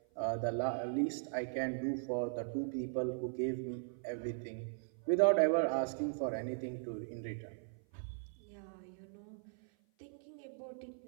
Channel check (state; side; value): silent; left; 52 dB below the other